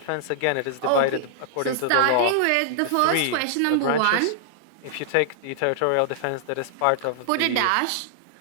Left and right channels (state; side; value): different; both; correlation -0.01